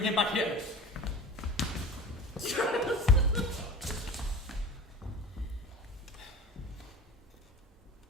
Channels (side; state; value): both; normal; correlation 0.36